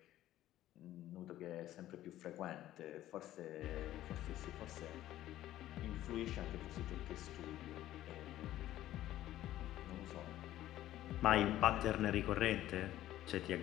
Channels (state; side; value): quieter; right; 13.8 dB